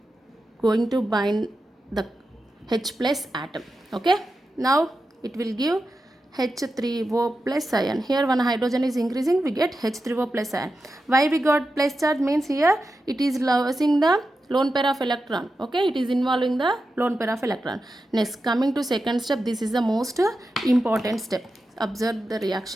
going to bind the H plus atom. Okay, now it will give H3O plus ion. Here one hydrogen is increasing, we get H3O plus ion. Why we got plus charge? Means here it is losing the lone pair of electron. Okay, it is involving the lone pair of electron. Next, coming to second step, this is the most important step. Observe the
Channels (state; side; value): normal; both; correlation 0.90